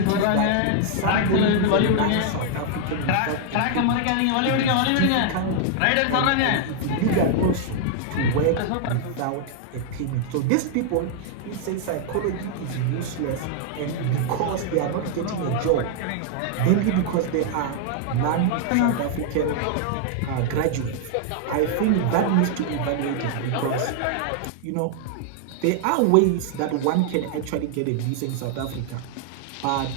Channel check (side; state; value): both; different; correlation 0.00